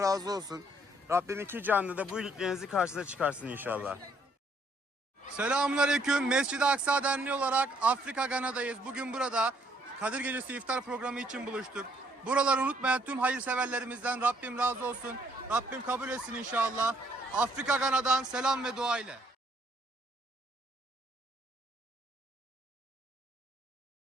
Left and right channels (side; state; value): both; normal; correlation 0.67